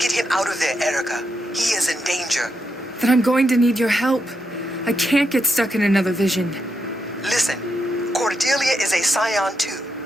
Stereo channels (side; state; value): both; normal; correlation 0.83